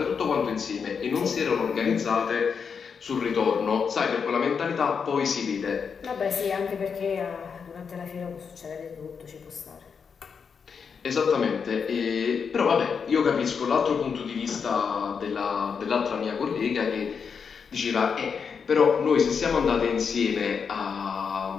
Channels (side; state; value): right; quieter; 6.2 dB